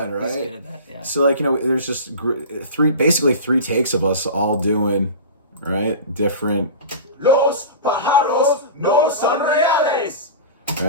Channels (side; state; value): both; inverted; correlation -0.31